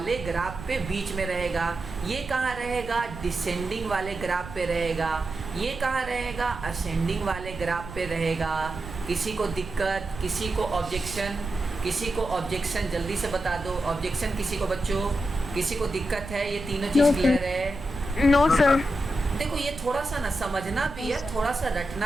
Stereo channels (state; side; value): noise; right; rumble, 13 dB below the sound